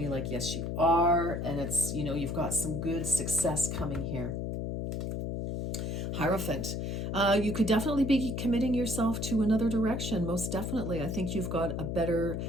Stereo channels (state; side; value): noise; left; hum, 3 dB below the sound